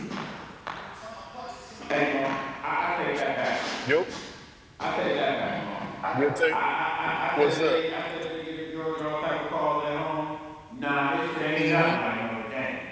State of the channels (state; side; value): identical; both; correlation 1.00